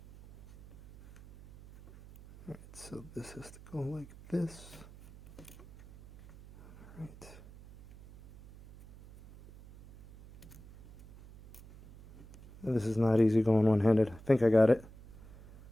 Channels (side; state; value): right; noise; hum, 20 dB below the sound